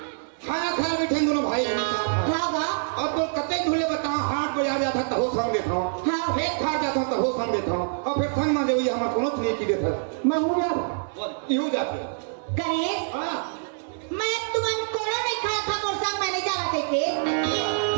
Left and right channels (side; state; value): left; silent; 60 dB below the other